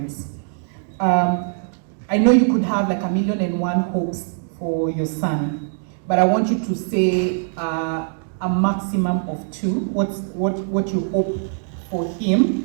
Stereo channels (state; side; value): silent; left; digital silence